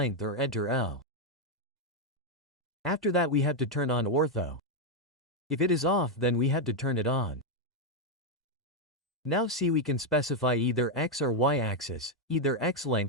or enter L. After that we have to turn on ortho. If it is off then we have to turn it on. Now see we can specify either x or y axis, either x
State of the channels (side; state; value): both; normal; correlation 0.02